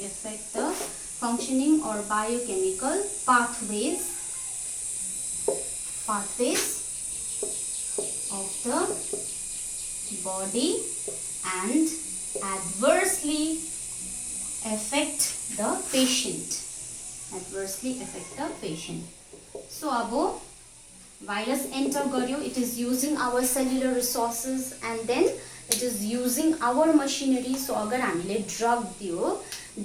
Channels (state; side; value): identical; both; correlation 1.00